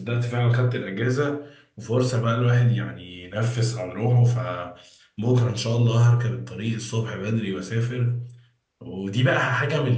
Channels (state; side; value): identical; both; correlation 1.00